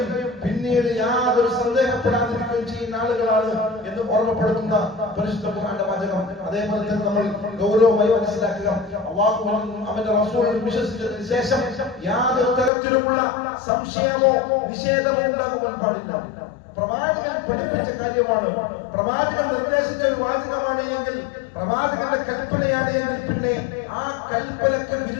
പിന്നീട് യാതൊരു സന്ദേഹപ്പെടാതിരിക്കുകയും ചെയ്യുന്ന ആളുകളാണ് എന്ന് ഓർമ്മപ്പെടുത്തുന്ന പരിശുദ്ധ ഖുർആന്റെ വചനം. അതേപോലെ തന്നെ നമ്മൾ ഗൗരവമായി മനസ്സിലാക്കുക, അല്ലാഹുവിലും അവന്റെ റസൂലിലും വിശ്വസിച്ചതിന് ശേഷം യാതൊരു തരത്തിലുമുള്ള സംശയമോ നിഷേധമോ ഉണ്ടാകുവാൻ പാടില്ല. പ്രവാചകൻ പഠിപ്പിച്ച കാര്യമാണ്, പ്രവാചകൻ നിർദ്ദേശിച്ച ഒരു വാചകമാണ് എങ്കിൽ, പ്രവാചകന്റെ കൽപ്പനയാണ് എങ്കിൽ പിന്നെ ആ കൽപ്പനക്ക്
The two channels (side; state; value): right; drops out; at 12.7 s